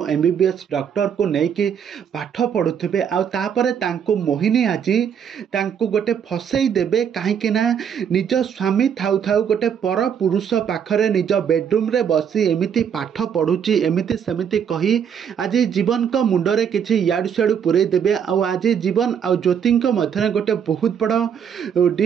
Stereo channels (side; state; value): left; quieter; 7.9 dB